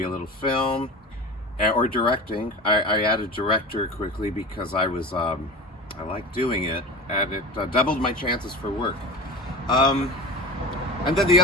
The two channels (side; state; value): both; normal; correlation 0.32